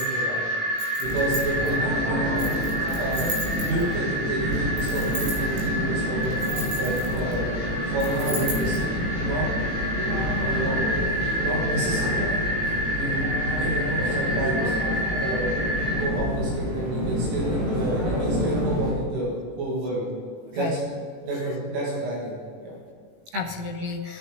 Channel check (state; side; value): late; left; 18 ms